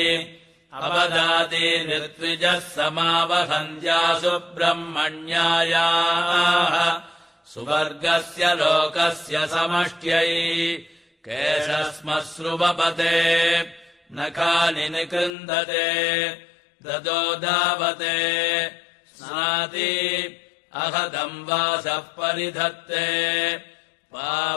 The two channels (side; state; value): right; drops out; at 15.3 s